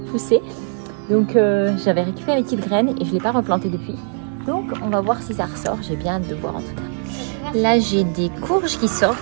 poussée. Donc j'avais récupéré les petites graines et je ne l'ai pas replantée depuis. Donc on va voir si ça ressort. J'ai bien hâte de voir en tout cas. Là j'ai des courges qui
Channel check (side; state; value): left; silent; 60 dB below the other